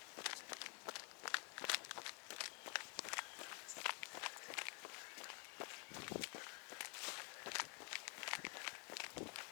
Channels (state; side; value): quieter; right; 37.1 dB